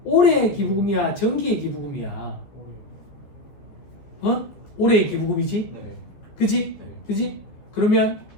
올해의 기부금이야? 정기의 기부금이야? 올해의 기부금이지? 네. 그지? 네. 그지? 그러면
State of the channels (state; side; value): late; right; 14 ms